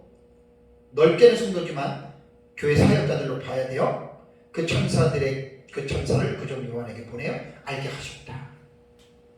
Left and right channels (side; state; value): both; identical; correlation 1.00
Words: 넓게는 성도지만 교회 사역자들로 봐야 돼요. 그 천사를 그 종 요한에게 보내어 알게 하셨다.